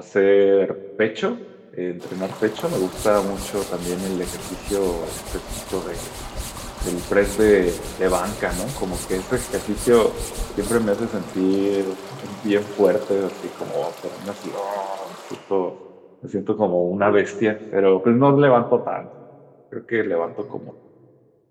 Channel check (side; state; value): both; identical; correlation 1.00